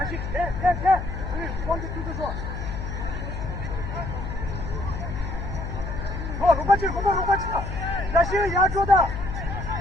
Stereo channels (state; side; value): noise; left; hum, 5 dB below the sound